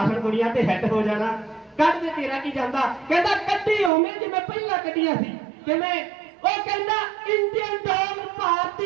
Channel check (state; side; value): drops out; left; at 3.9 s